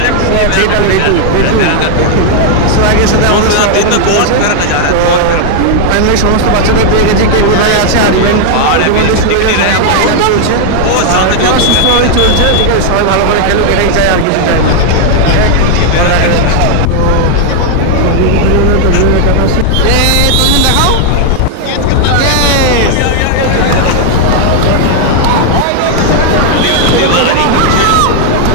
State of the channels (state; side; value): different; both; correlation 0.00